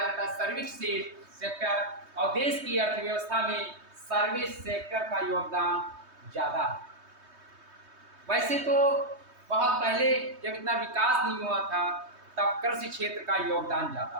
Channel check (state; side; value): late; left; 3.2 ms